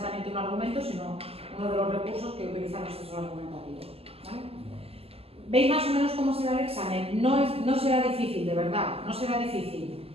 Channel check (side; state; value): left; late; 0.29 ms